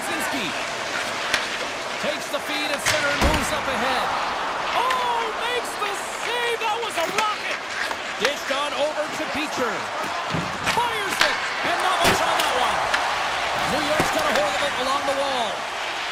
Takes the feed at center and moves up ahead. Oh, makes the save. That was a rocket. Dished on over to Beecher. Fires it. And not much on that one. New York's got a hold of it along the wall.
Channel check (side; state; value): both; identical; correlation 1.00